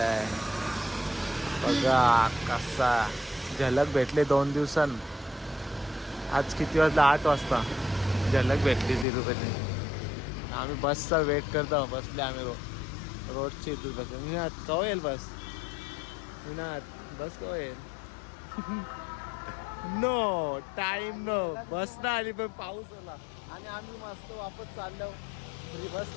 आहे बघा कसा झलक भेटले 2 दिवसां आज किती वाजता 8 वाजता झलक भेटली तिरुपती आम्ही बसचा वेट करतो बसले आम्ही रोडची तिरुपती विनात कवा येईल बस विनात बस कवा येईल नो टाइम नो बस ना आली पण पाऊस आला आणि आम्ही मस्त वापस चाललो फ्री बस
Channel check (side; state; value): right; drops out; at 9.1 s